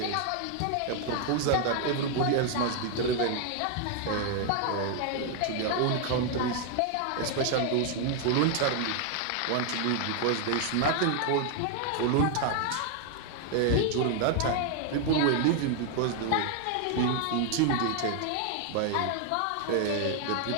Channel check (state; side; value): different; both; correlation 0.00